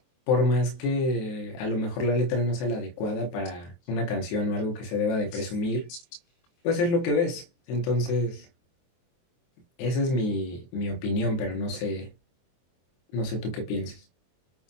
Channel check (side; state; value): right; late; 23 ms